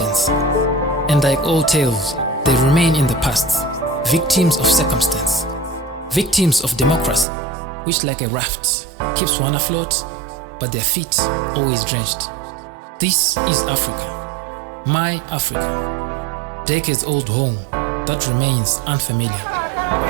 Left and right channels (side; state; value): left; drops out; at 7.2 s